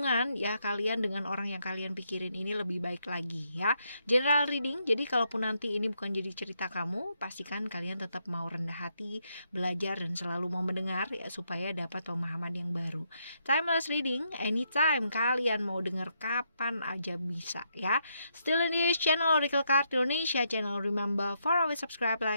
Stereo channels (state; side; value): inverted; both; correlation -0.78